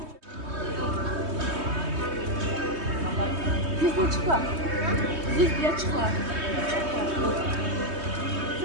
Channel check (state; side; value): late; left; 3.2 ms